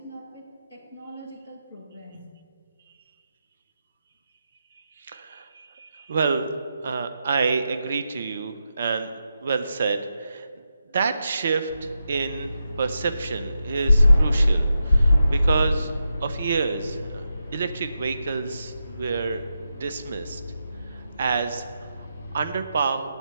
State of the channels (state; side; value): inverted; both; correlation -0.87